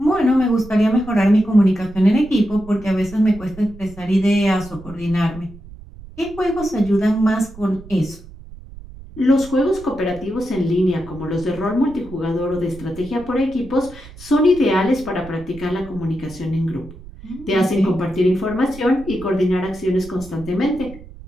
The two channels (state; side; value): noise; right; rumble, 17 dB below the sound